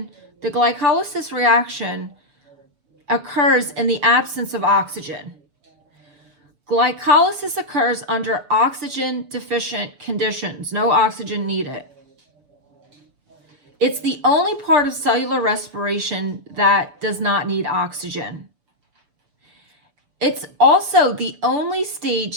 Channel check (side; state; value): left; late; 6.8 ms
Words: reaction occurs in the absence of oxygen. Glycolysis occurs under oxygen deficient conditions, no oxygen needed. It's the only part of cellular respiration that does not need oxygen. It's also the only